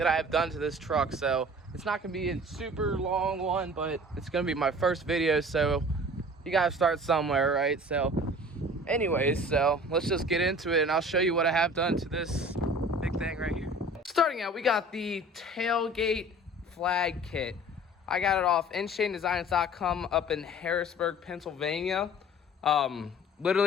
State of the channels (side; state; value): both; normal; correlation 0.45